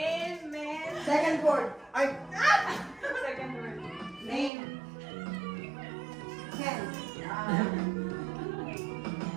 men. Second word. Ay! Second word. Name. Ken. Name.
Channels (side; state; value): left; drops out; at 4.5 s